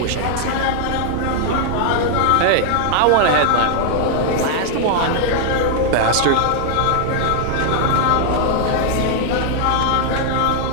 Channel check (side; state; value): both; different; correlation 0.00